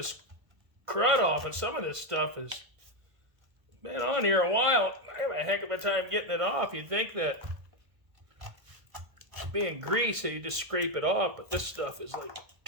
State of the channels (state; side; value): late; left; 1.5 ms